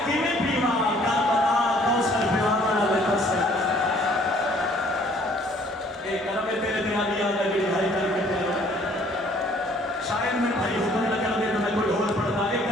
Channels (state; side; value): normal; both; correlation 0.59